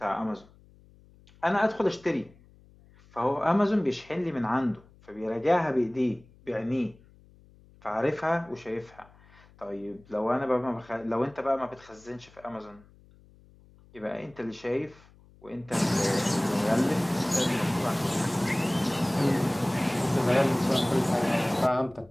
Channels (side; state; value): left; noise; hum, 26 dB below the sound